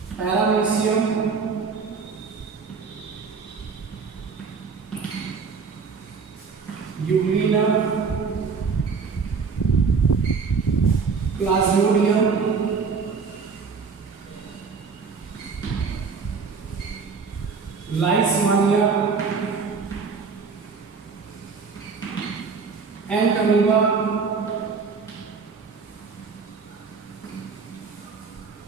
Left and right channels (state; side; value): quieter; left; 5.2 dB